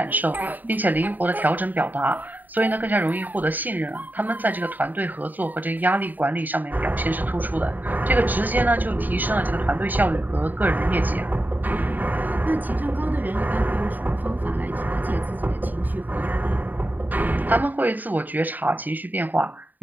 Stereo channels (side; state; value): left; late; 0.086 ms